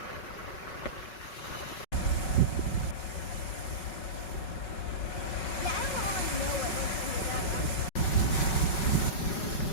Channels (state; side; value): late; right; 5.4 ms